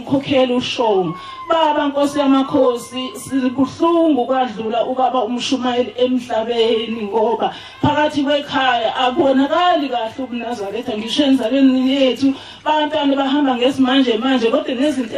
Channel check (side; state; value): both; identical; correlation 1.00